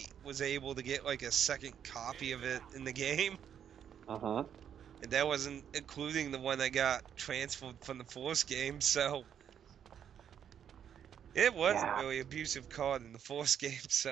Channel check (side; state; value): left; quieter; 8.8 dB